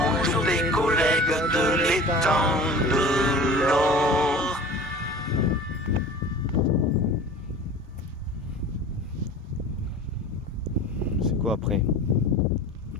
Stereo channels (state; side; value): normal; both; correlation 0.40